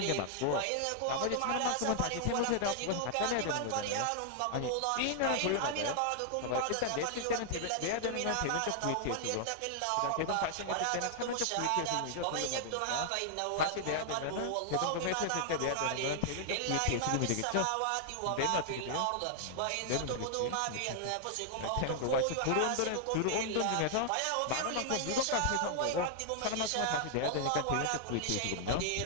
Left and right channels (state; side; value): different; both; correlation 0.00